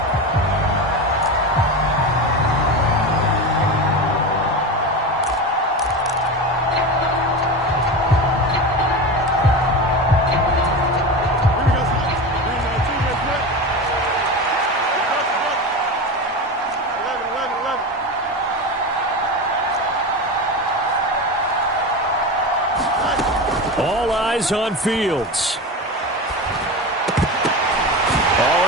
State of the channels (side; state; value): both; normal; correlation 0.24